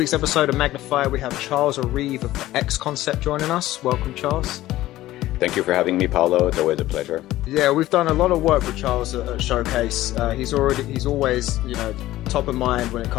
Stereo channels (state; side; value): quieter; right; 15.6 dB